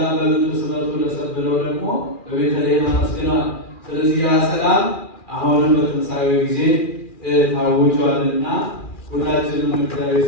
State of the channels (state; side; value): late; right; 2.4 ms